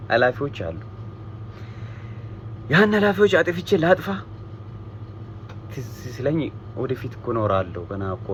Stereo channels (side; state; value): both; identical; correlation 1.00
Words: ኃላፊዎች አሉ። ያን ኃላፊዎች አጥፍቼ ላጥፋ ትዝ ሲለኝ ወደፊት እኮ እኖራለሁ ገና እኮ